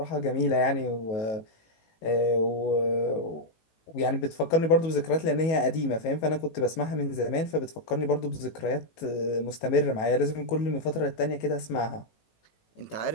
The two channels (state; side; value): late; right; 19 ms